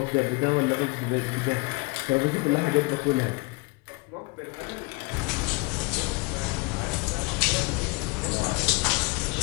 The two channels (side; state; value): right; quieter; 27.2 dB